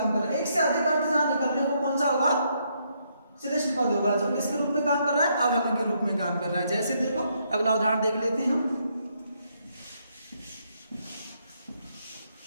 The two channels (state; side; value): inverted; both; correlation -0.74